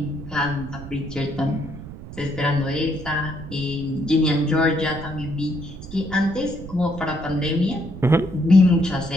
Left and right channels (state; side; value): noise; right; rumble, 13 dB below the sound